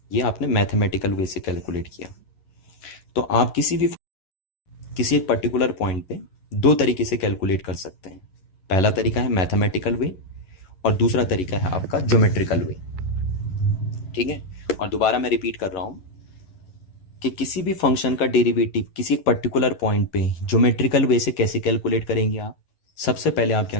ये आपने मैथमेटिकल वे से कैलकुलेट किया। तो आप किसी एक पर्टिकुलर पॉइंट पे दो तरीके से कैलकुलेट कर सकते हैं। पहला तरीका है मैथमेटिकल वे और दूसरा तरीका है आपका ज्योमेट्रिकल वे। ठीक है, और दोबारा मैं रिपीट कर रहा हूं कि किसी भी फंक्शन का डेरिवेटिव किसी एक पर्टिकुलर पॉइंट पे ज्योमेट्रिकल वे से कैसे कैलकुलेट करेंगे आप, सबसे पहले आप क्या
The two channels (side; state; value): right; late; 11 ms